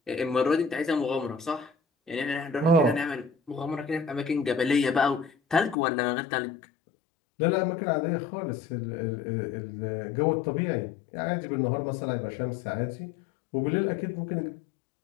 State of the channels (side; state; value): right; drops out; at 5.8 s